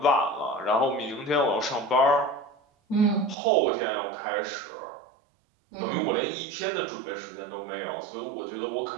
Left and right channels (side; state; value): left; drops out; at 3.4 s